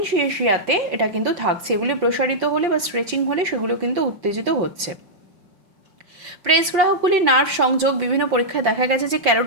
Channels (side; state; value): left; late; 5.6 ms